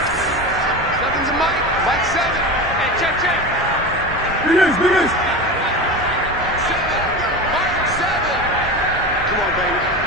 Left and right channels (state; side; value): normal; both; correlation 0.26